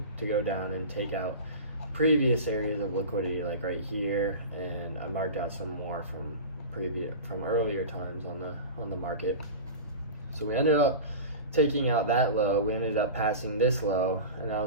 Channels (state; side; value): inverted; both; correlation -0.31